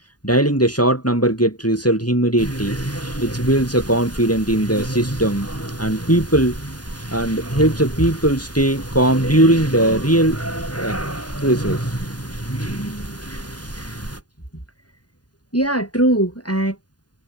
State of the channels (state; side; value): late; right; 0.69 ms